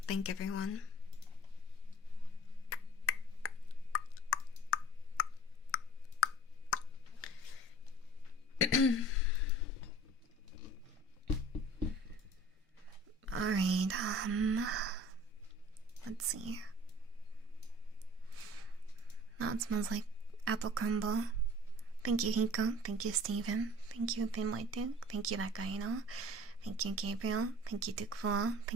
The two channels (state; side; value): normal; both; correlation 0.45